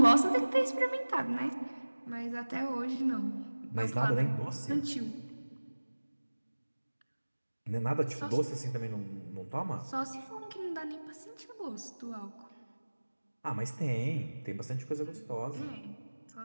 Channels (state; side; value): inverted; both; correlation -1.00